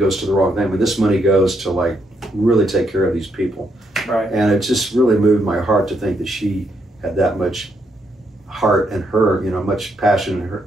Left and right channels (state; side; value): normal; both; correlation 0.77